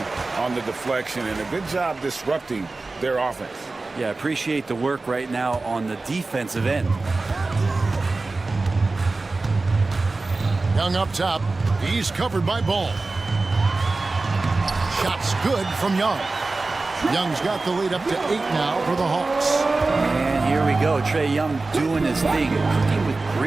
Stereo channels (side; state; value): left; quieter; 3.5 dB